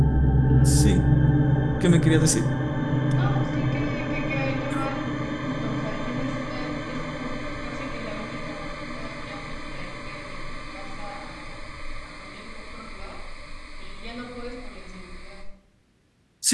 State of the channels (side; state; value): both; identical; correlation 1.00